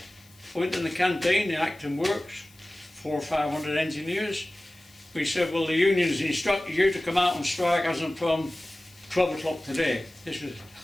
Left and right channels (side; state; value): left; noise; hiss, 28 dB below the sound